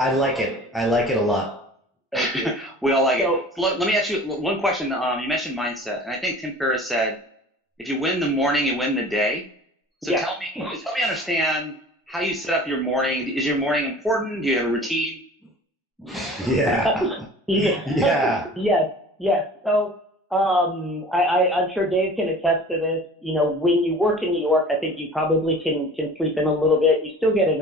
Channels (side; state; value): both; normal; correlation 0.43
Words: want. like it. I like it a lot. Thank you. we all like it. So So let me ask you one question. You mentioned mindset, and I think Tim Ferriss said, "If you win the morning, you win the day." So yeah, help me understand how you set up your morning. Is your morning important? Do you have a routine? Yeah. yeah, Yeah. yes. So I'm sure Dave can attest to this. When you work in New York, I think you probably can sleep in a little bit. You still get in